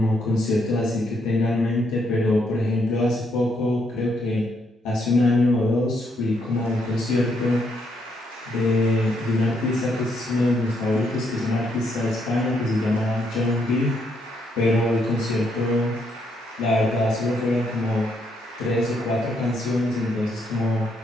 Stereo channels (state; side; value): normal; both; correlation 0.74